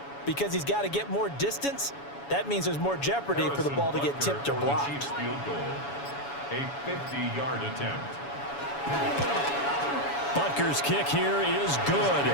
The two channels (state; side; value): late; right; 7.1 ms